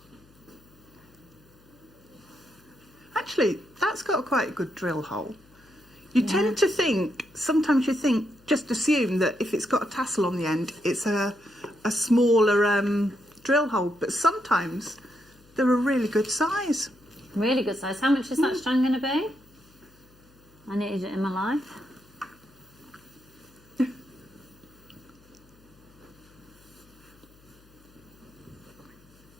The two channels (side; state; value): left; noise; hum, 28 dB below the sound